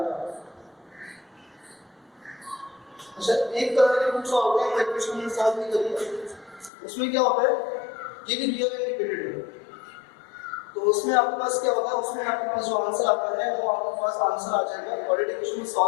अच्छा, एक तरह के रूट्स होते हैं इक्वेशन में सॉल्व नहीं करिए, उसमें क्या होता है ये भी रियल एंड रिपीटेड है। तो उसमें आपके पास क्या होता है, उसमें आपके पास जो आंसर आता है वो आपके पास आंसर आ जाएगा क्वाड्रेटिक इक्वेशन में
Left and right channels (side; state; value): right; drops out; at 6.7 s